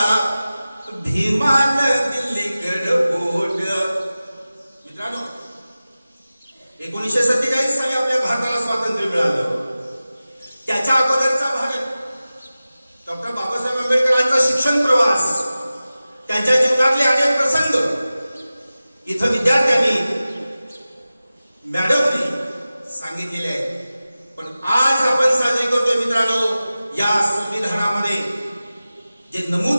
भीमान दिल्लीकड बोट. मित्रांनो, 1947 साली आपल्या भारताला स्वातंत्र्य मिळालं. त्याच्या अगोदरचा भारत, डॉक्टर बाबासाहेब आंबेडकरांचा शिक्षण प्रवास, त्यांच्या जीवनातले अनेक प्रसंग इथं विद्यार्थ्यांनी मॅडमनी सांगितलेले आहे. पण आज आपण साजरी करतोय मित्रांनो, या संविधानामध्ये जे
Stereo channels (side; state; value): both; inverted; correlation -0.96